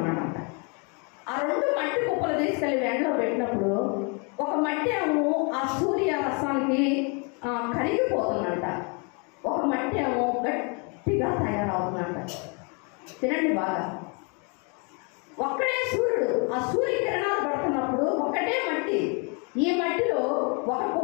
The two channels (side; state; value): right; quieter; 34.4 dB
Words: ఆ 2 మట్టి కుప్పలు తీసుకెళ్ళి ఎండలో పెట్టినప్పుడు ఒక మట్టి ఏమో ఆ సూర్య రసానికి కరిగిపోతుందంట, ఒక మట్టి ఏమో గట్టిగా తయారవుతుందంట. తినండి బాగా. ఒక్కడే సూర్యుడు, ఆ సూర్యకిరణాలు పడుతున్నప్పుడు ఒకటే మట్టి, ఈ మట్టిలో ఒక